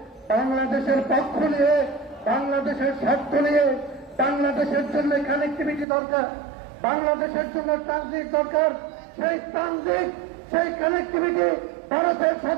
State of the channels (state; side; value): drops out; left; at 5.9 s